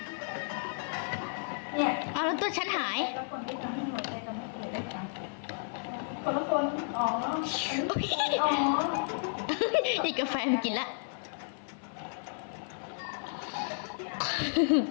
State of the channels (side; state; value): right; silent; 56 dB below the other